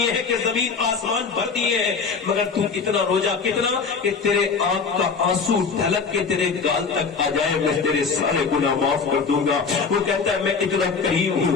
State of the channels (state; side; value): quieter; right; 5.2 dB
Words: ہیں کہ زمین آسمان بھر دیے ہیں، مگر تو اتنا رو جا، کتنا کہ تیرے آنکھ کا آنسو ڈھلک کے تیرے گال تک آ جائے، میں تیرے سارے گناہ معاف کر دوں گا. وہ کہتا ہے میں اتنا کریم